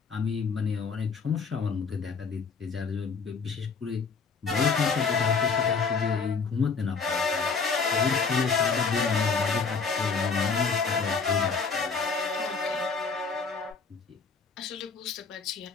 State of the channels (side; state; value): right; quieter; 5.0 dB